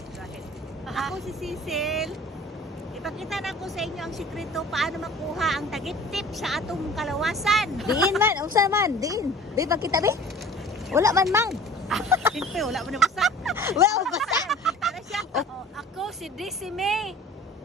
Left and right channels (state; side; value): normal; both; correlation 0.45